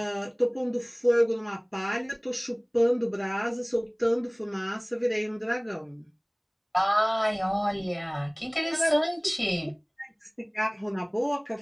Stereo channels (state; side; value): identical; both; correlation 1.00